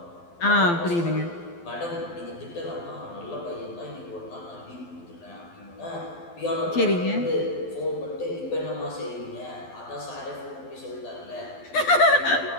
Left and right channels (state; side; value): late; right; 12 ms